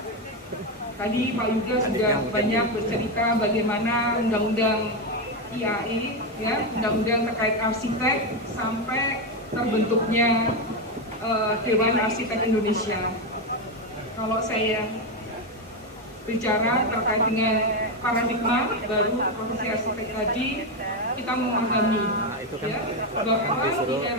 Tadi Pak Yuda sudah banyak bercerita bagaimana undang-undang IAI, ya, undang-undang terkait arsitek sampai terbentuknya Dewan Arsitek Indonesia. Kalau saya bicara terkait dengan paradigma baru profesi arsitek tadi, kita memahami ya, bahwa di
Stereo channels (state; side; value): normal; both; correlation 0.09